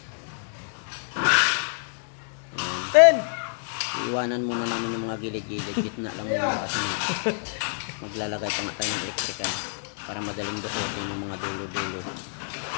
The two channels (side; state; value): right; silent; digital silence